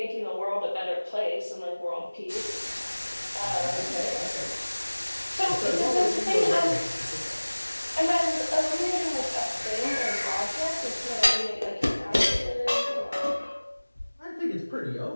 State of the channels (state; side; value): inverted; both; correlation -1.00